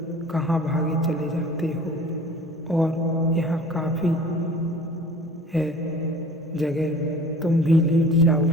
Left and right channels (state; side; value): normal; both; correlation 0.45